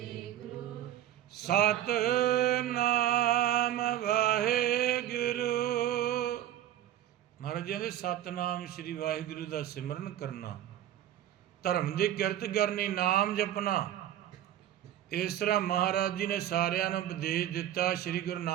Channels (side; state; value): left; quieter; 12.0 dB